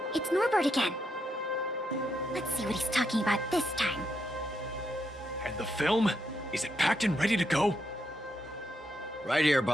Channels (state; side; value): normal; both; correlation 0.80